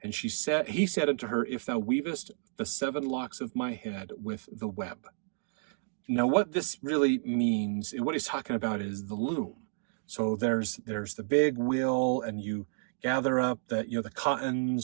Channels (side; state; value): left; silent; digital silence